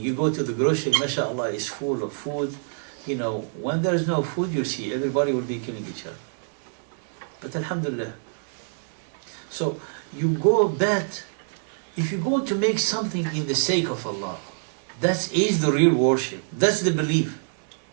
You go to the grocery, mashallah, it's full of food. When there's no food, you see, everybody will be killing each other. But alhamdulillah. So you go back, if you're going to make something in the sake of Allah, that is the real worship. That's the belief.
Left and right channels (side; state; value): left; silent; 61 dB below the other